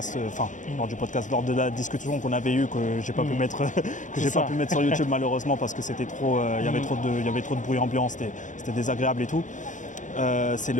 lors de la discussion qu'on avait eue, que j'ai pas pu mettre, sur YouTube malheureusement parce que c'était trop, il y avait trop de bruit ambiant, c'était désagréable et tout. C'est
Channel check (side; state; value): right; late; 0.36 ms